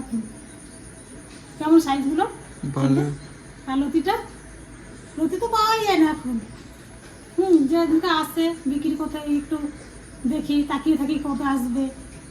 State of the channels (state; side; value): identical; both; correlation 1.00